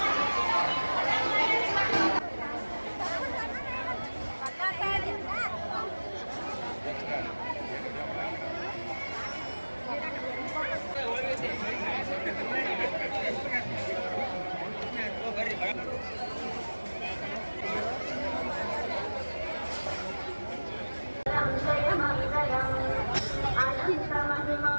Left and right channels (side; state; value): both; inverted; correlation -1.00